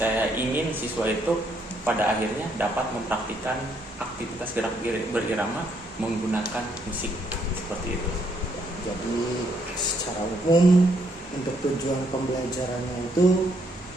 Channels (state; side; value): normal; both; correlation 0.72